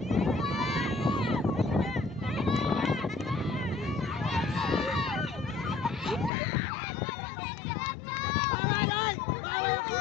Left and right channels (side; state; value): right; drops out; at 6.3 s